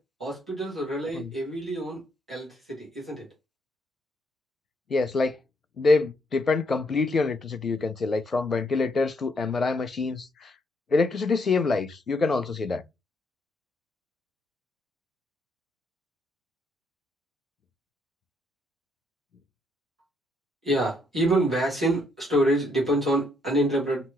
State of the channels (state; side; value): normal; both; correlation 0.73